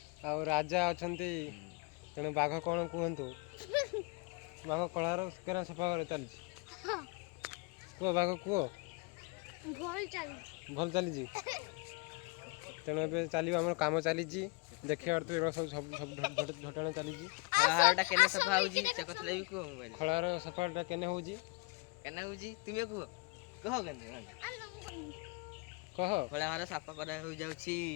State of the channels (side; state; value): right; quieter; 26.4 dB